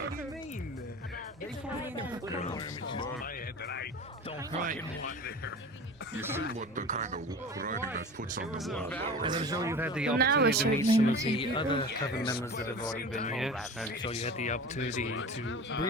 Right. You see what the kind of writing that puts on the wall. And I'm sure you've had the opportunity to meet some of the other Coven members that have already been here. I'm sure you had the opportunity to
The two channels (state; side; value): normal; both; correlation 0.35